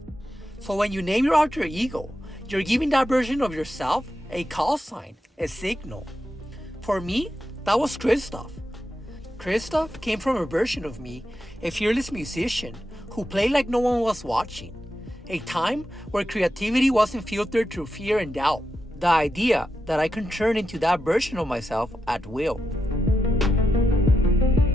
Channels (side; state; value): both; normal; correlation 0.87